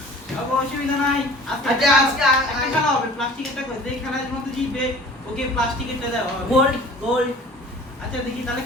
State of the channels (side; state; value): both; normal; correlation 0.46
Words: অসুবিধা নাই। আচ্ছা, আজকে একটা খেলা হবে, প্লাস্টিকেরটা করে যেই খেলার মধ্যে জিতবে ওকে প্লাস্টিকেরটা দেওয়া হবে। গোল্ড। আচ্ছা দেখি তাহলে